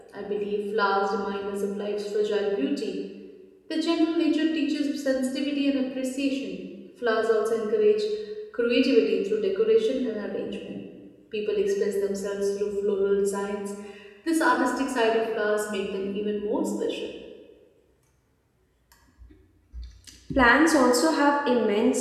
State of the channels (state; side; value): identical; both; correlation 1.00